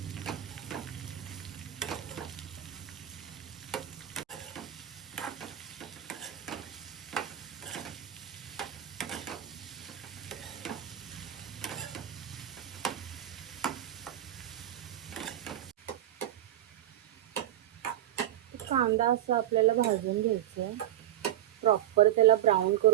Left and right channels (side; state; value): left; quieter; 12.6 dB